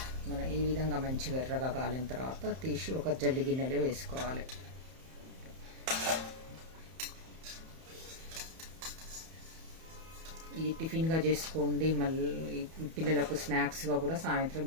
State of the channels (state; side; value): late; left; 31 ms